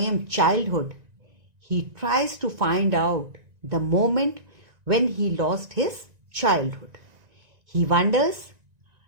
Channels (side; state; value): left; late; 1.9 ms